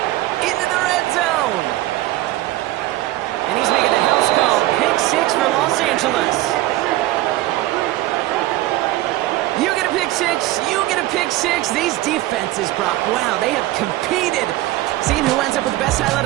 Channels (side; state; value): left; quieter; 16.6 dB